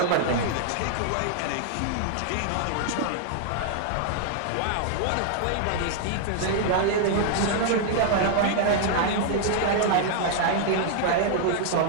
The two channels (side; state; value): both; different; correlation -0.01